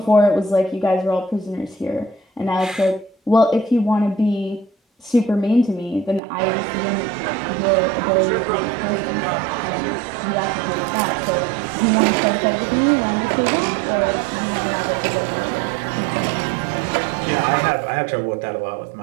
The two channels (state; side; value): drops out; left; at 6.2 s